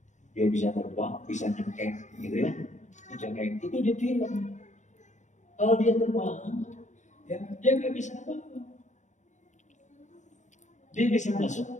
Dia bisa terbang, bisa nyengkeng, gitu ya. Nyengkeng itu di film. Kalau dia terbang, ya dia nggak bisa apa-apa. Dia bisa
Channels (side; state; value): right; late; 0.35 ms